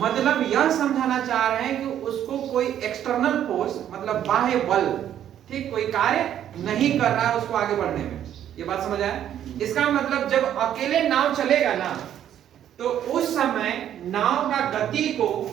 यह समझाना चाह रहे हैं कि उसको कोई एक्सटर्नल फोर्स, मतलब बाह्य बल ठीक, कोई कार्य नहीं कर रहा है उसको आगे बढ़ने में। ये बात समझ आया? इसका मतलब जब अकेले नाव चलेगा ना तो उस समय नाव का गति को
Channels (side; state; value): left; quieter; 10.5 dB